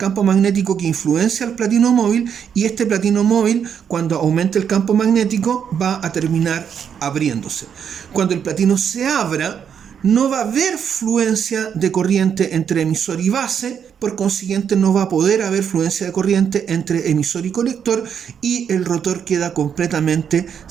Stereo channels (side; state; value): left; quieter; 7.9 dB